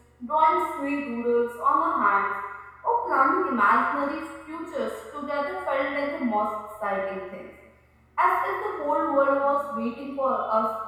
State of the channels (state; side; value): identical; both; correlation 1.00